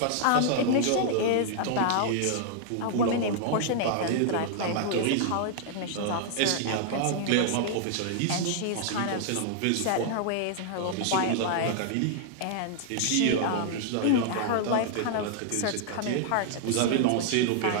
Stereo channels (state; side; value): different; both; correlation -0.01